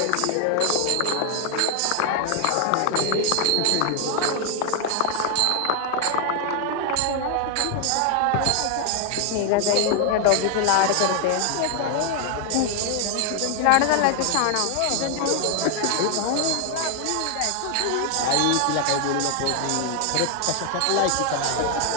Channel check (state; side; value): different; both; correlation 0.00